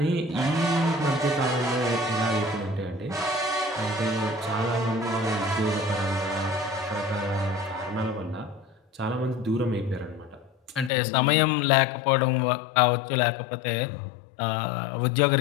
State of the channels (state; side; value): drops out; right; at 10.9 s